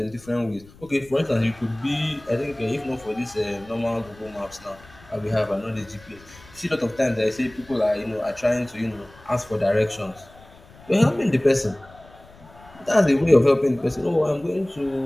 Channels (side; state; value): left; noise; rumble, 23 dB below the sound